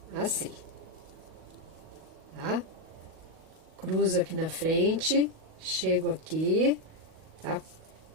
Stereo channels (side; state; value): left; late; 38 ms